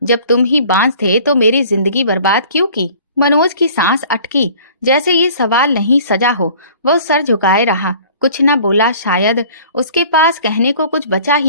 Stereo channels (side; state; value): both; inverted; correlation -0.49